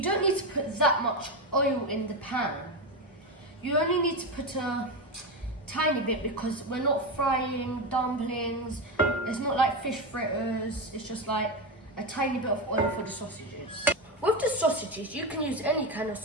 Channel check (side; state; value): both; normal; correlation 0.15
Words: don't need to put that much oil in the pan. You only need to put a tiny bit, because we're not frying dumplings. It's not like fish fritters. It's just like a tiny bit of oil for the sausages. With the sausages, you can use any kind of